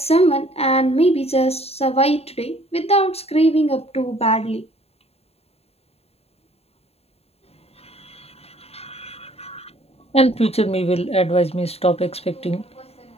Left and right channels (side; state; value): right; late; 0.29 ms